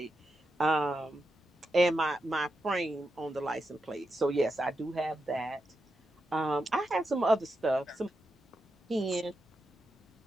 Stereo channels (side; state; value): both; normal; correlation 0.87